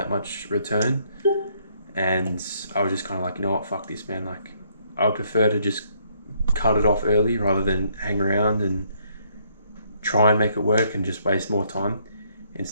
much return. And I was just kind of like, you know what, fuck this, man. Like I would prefer to just cut it off early rather than hang around and try and make it work and just waste more time,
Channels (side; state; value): both; inverted; correlation -0.69